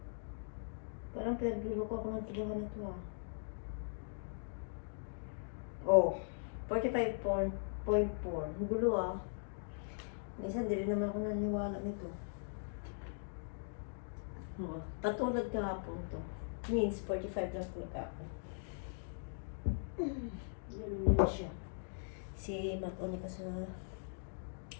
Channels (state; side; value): silent; right; digital silence